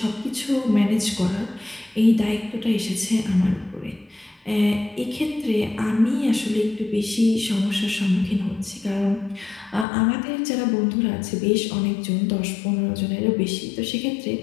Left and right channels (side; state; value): right; drops out; at 9.9 s